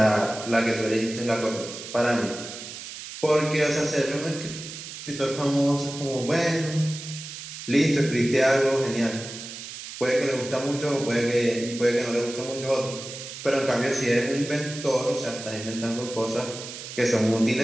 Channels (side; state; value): right; noise; hiss, 11 dB below the sound